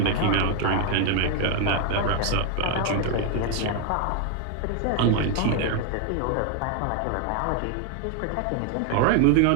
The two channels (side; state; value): both; different; correlation 0.01